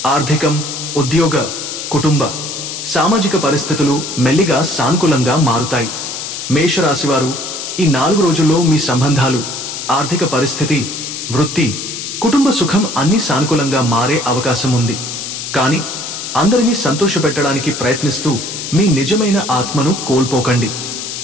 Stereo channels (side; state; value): left; noise; hiss, 7 dB below the sound